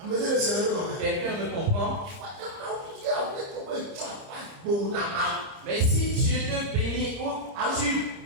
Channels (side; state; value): left; late; 30 ms